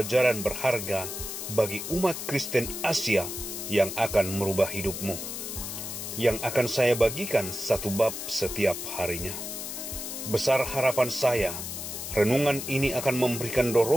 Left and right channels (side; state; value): left; noise; hiss, 6 dB below the sound